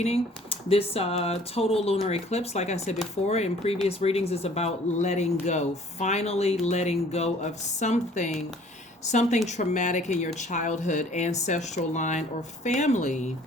This total lunar eclipse, like I said before in previous readings, is about letting go. Finally letting go of something traumatic in your childhood, ancestral line, or family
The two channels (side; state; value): both; normal; correlation 0.55